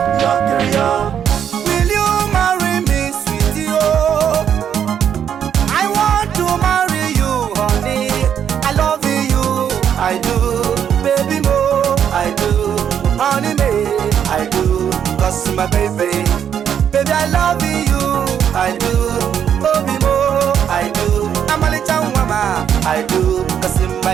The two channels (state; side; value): quieter; left; 8.7 dB